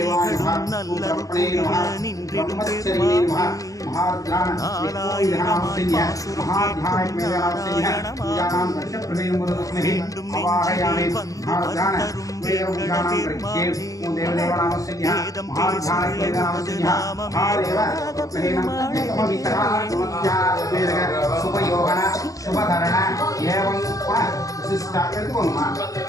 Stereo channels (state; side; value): late; right; 0.16 ms